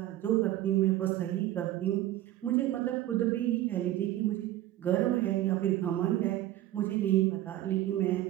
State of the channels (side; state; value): left; quieter; 14.4 dB